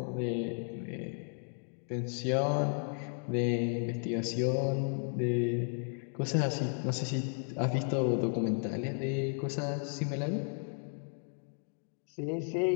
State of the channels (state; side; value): silent; right; 55 dB below the other